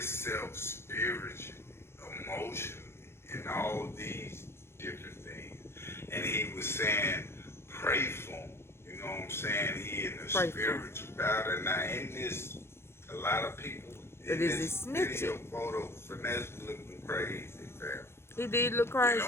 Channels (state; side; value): late; right; 0.12 ms